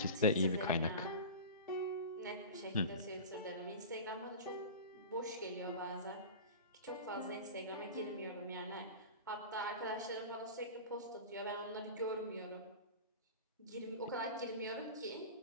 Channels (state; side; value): inverted; both; correlation -0.31